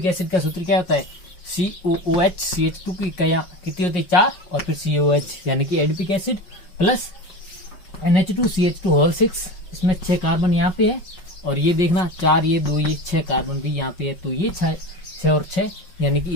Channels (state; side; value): late; right; 5.5 ms